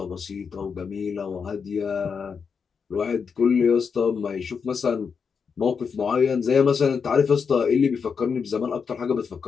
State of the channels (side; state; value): right; quieter; 6.0 dB